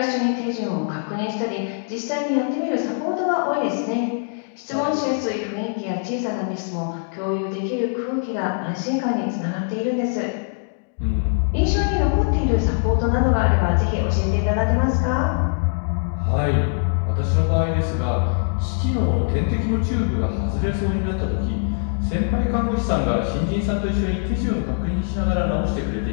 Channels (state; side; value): silent; right; digital silence